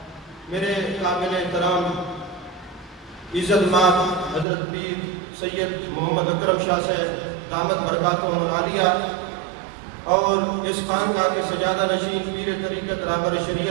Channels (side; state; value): left; drops out; at 4.5 s